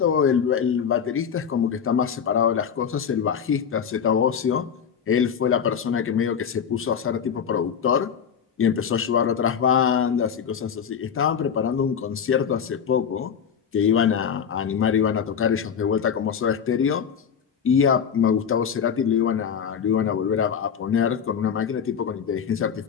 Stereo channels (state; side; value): quieter; right; 7.5 dB